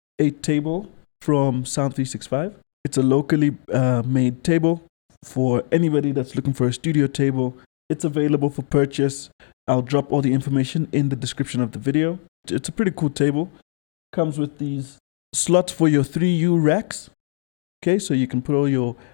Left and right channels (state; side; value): silent; right; digital silence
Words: a table from Sound 365. It's a locally made table for anybody that's looking for a studio table. It's available for purchase. I'll drop all the information in the description of the video. It's a pretty cool table. Comes with these slots for your 3U racks. Okay, so you can put all your